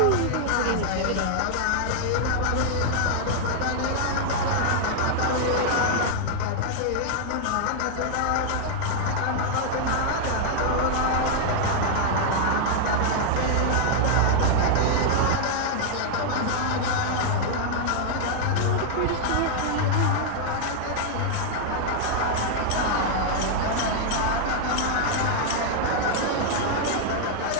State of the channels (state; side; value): different; both; correlation -0.01